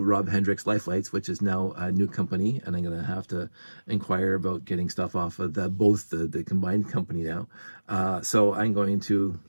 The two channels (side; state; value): both; inverted; correlation -1.00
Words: Rob Hendricks Life Lights, which is now a new company, and I'm gonna have to inquire about getting stuff off of both the combined company now. So I'm going to